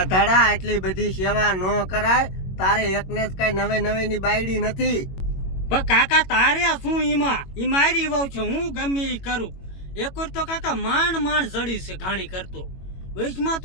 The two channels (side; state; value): right; late; 21 ms